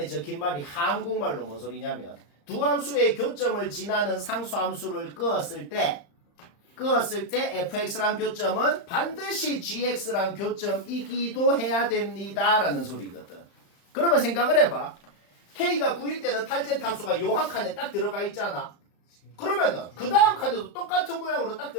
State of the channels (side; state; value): right; late; 35 ms